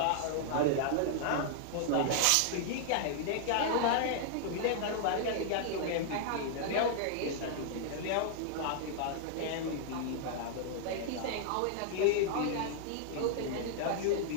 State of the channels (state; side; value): different; both; correlation -0.01